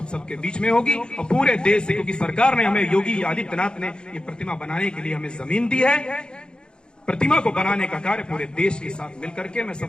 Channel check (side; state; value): right; late; 0.049 ms